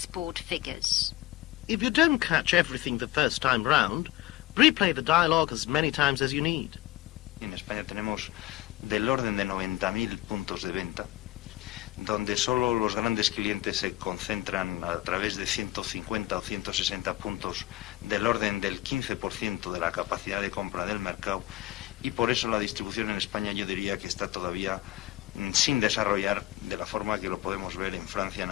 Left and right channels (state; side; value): quieter; right; 16.3 dB